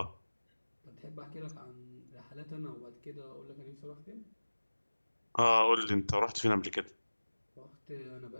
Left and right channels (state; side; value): inverted; both; correlation -1.00